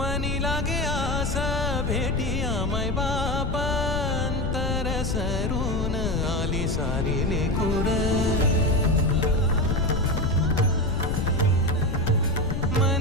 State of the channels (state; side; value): noise; left; rumble, 2 dB below the sound